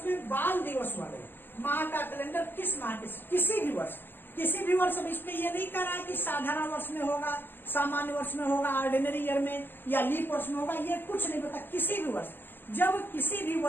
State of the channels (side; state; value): right; late; 0.094 ms